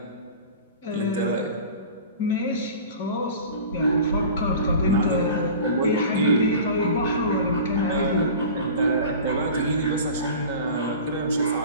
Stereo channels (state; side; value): inverted; both; correlation -0.38